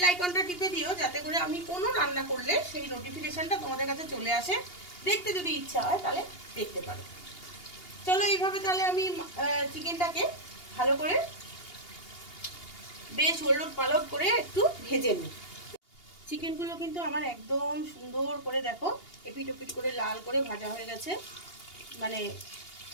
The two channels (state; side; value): late; right; 2.8 ms